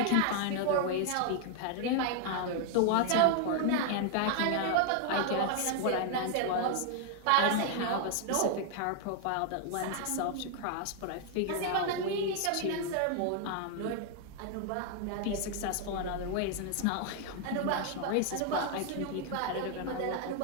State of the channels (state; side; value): different; both; correlation 0.00